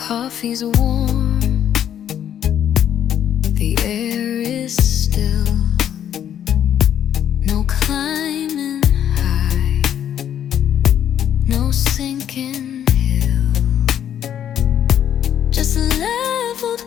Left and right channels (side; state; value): right; quieter; 9.9 dB